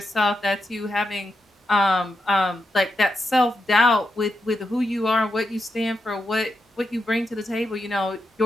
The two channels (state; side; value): normal; both; correlation 0.85